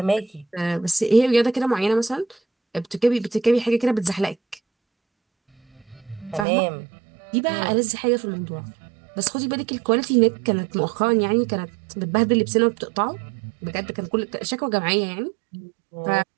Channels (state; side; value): drops out; left; at 6.5 s